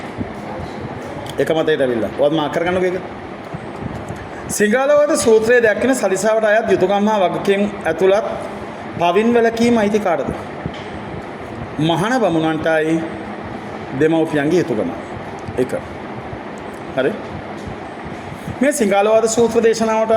එක මතයට ඇවිල්ලා. ඔයත් මාක් කරගන්නකෝ ඒක. සිංහලවද සූත්‍රයේ දැක්වෙන සලිසාවට අයත් යුතුයකම් හා වගකීම් ඇතුළත් පවින් වැළකීම අයිති කාටද? මහාන බමුණන්ටයි දෙමව්පියන්ගේ යුතුයකම. එක. හරි? මේ සිංහලවද සූත්‍ර දේශනාවට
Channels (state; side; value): identical; both; correlation 1.00